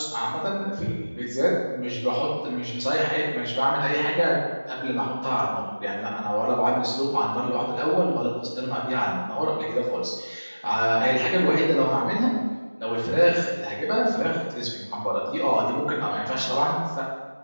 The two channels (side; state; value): both; inverted; correlation -1.00